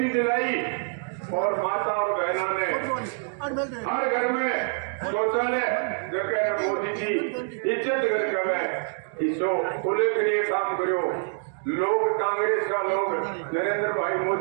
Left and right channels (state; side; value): silent; left; 61 dB below the other